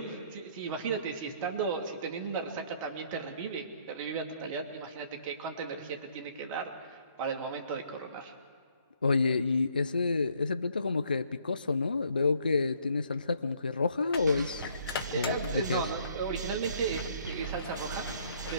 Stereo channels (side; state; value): both; inverted; correlation -0.65